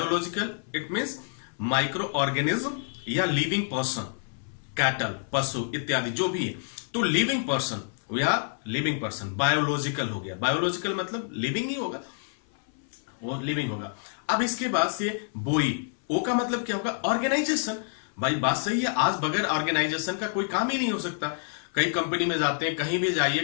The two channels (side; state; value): right; silent; 59 dB below the other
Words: it means micro organism या लिविंग पर्सन, कैटल, पशु इत्यादि जो भी है, तो लिविंग पर्सन या लिविंग पर्सन बायोलॉजिकल हो गया। बायोलॉजिकल मतलब लिविंग ही होगा, वो लिविंग होगा। अब इसके बाद से बोई, ओ का मतलब क्या होगा, ऑर्गेनाइजेशन। भाई बात सही है, आज बगैर ऑर्गेनाइजेशन का कोई काम ही नहीं हो सकता। कई कंपनी में जाते हैं, कहीं भी